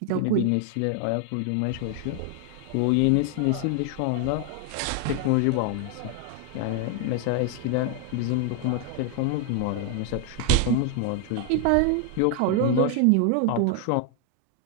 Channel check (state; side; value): different; both; correlation 0.00